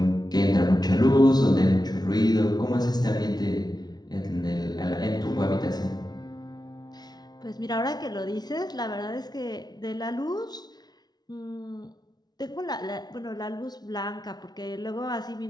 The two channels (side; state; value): right; late; 0.19 ms